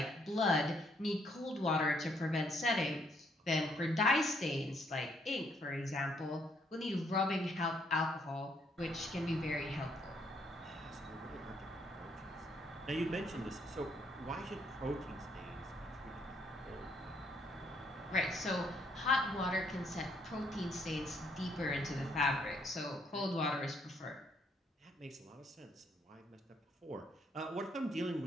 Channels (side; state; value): both; normal; correlation 0.70